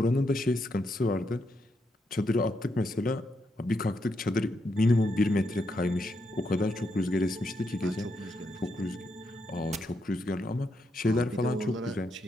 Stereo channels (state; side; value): normal; both; correlation 0.80